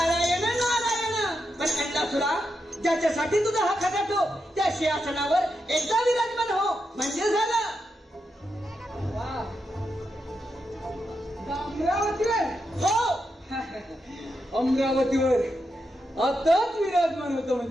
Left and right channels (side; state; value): both; normal; correlation 0.85